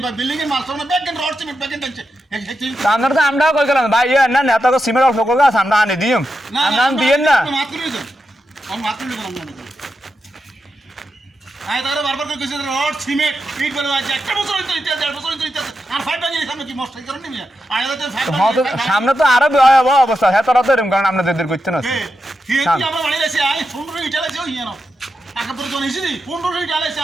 আপনার তো আমরাও কই গেলাম ভাই না নেতা সিমেন্ট অল্প করে আছে আমরা আনি দিম আপনার দিয়েন না বারবার করে কইছে রড সিমেন্ট ইট বলে আছে একটা বছর হইতো ইতিহাস 1.5 বছর হইতো ইতিহাস আর ফাইভ বাজি সামনে কি মস্ত করেন নি মিয়া সামনে তো আরো ভয়াবহ অবস্থা হ্যাঁ তোরা তো এরকম কারণ আপনাদের করতে না কি আমরা বাড়ি আছে আই 15 ইট আলাইছে ওই না টাকা পরে জন এসেছি 15 ইট আলাইছে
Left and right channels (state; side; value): normal; both; correlation 0.87